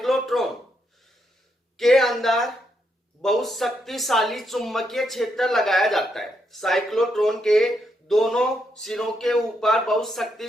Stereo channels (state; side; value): normal; both; correlation 0.79